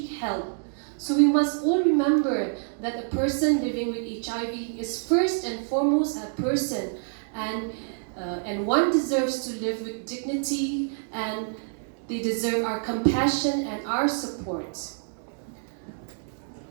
help. So we must all remember that a person living with HIV is first and foremost a person, and one deserves to live with dignity, and they deserve our compassion and our support.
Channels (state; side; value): silent; left; digital silence